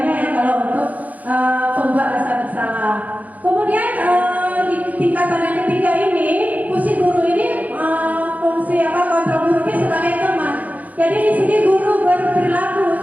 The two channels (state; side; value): late; left; 0.077 ms